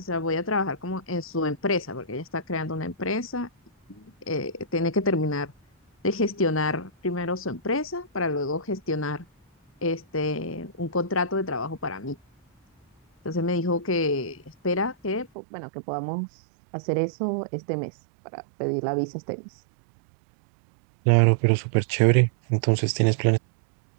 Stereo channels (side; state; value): left; drops out; at 15.3 s